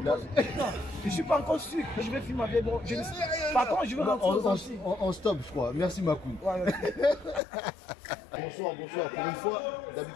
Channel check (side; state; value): right; drops out; at 7.4 s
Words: je suis pas encore sûr que je vais filmer ma vieille. Par contre, je veux rentrer on stop, je crois. Merci, Makoun. Ouais, Bonsoir. Pour une fois,